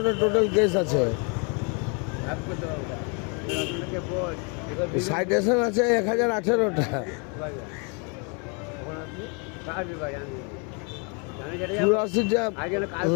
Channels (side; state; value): right; quieter; 35.0 dB